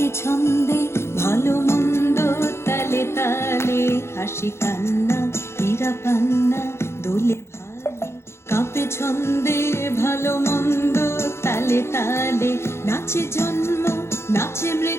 ছন্দে ভালো মন্দ তালে তালে। হাসি কান্না হীরা পান্না দোলে ভালে, কাঁপে ছন্দে ভালো মন্দ তালে তালে। নাচে জন্ম নাচে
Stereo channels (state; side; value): late; right; 0.13 ms